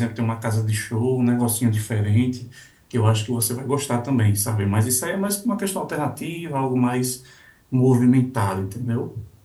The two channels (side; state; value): both; identical; correlation 1.00